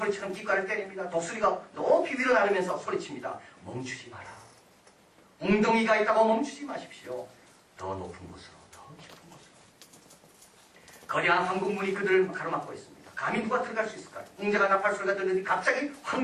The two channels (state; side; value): identical; both; correlation 1.00